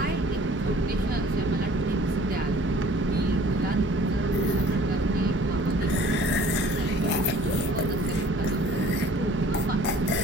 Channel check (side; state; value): both; normal; correlation 0.52